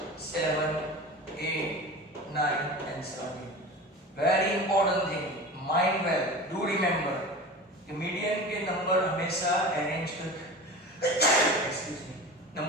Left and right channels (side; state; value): both; normal; correlation 0.33